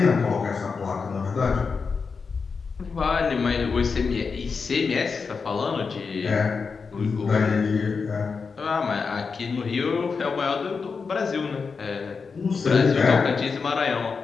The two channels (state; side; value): quieter; right; 5.1 dB